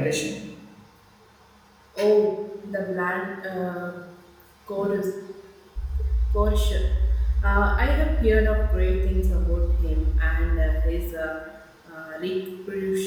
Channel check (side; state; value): both; identical; correlation 1.00